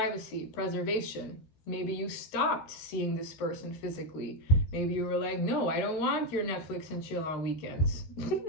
preservation. Maybe you stopped seeing this person physically. Maybe you were like, no, I don't want your Netflix and chill on weekends.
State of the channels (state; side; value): late; right; 13 ms